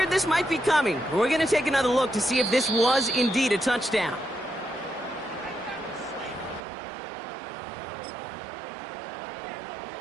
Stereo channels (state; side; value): drops out; left; at 6.6 s